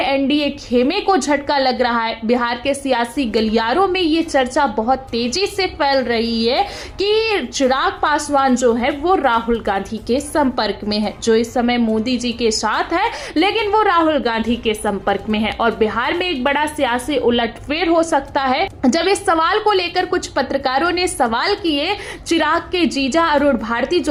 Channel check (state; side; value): identical; both; correlation 1.00